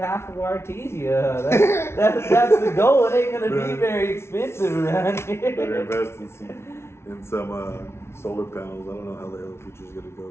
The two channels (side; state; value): right; late; 0.12 ms